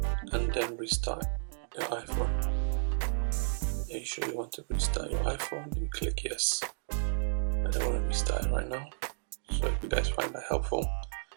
and then restart your iPhone. Are you sure you want to restart your iPhone? You click yes. I don't want to restart it right now. So if you guys find that helpful,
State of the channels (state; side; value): silent; left; digital silence